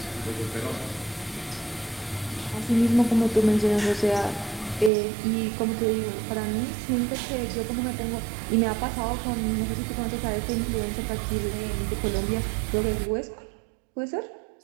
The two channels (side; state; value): left; drops out; at 4.9 s